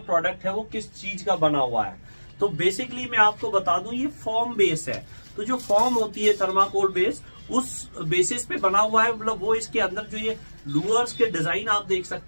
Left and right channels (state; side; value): inverted; both; correlation -1.00